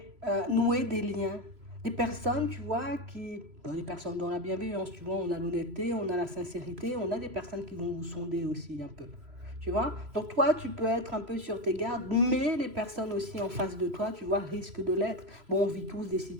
nouer des liens. Des personnes, tu vois, des personnes dans la bienveillance, tu vois, on a l'honnêteté, on a la sincérité, on a des personnes qui vont vous sonder aussi un peu. Tu vois? Donc toi, tu peux être un peu sur tes gardes, mais les personnes aussi en face de toi, tu vois, risquent de l'être. Bon, on vit tous des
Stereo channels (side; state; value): left; late; 3.0 ms